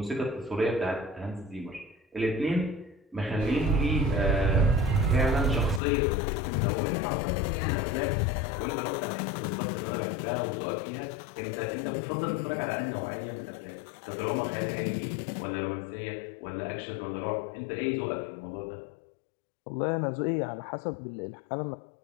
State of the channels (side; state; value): right; drops out; at 5.8 s